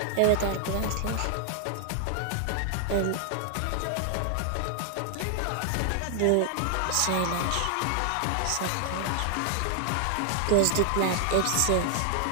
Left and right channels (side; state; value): both; different; correlation 0.00